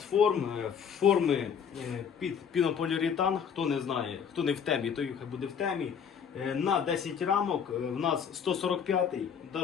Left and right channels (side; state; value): right; quieter; 7.3 dB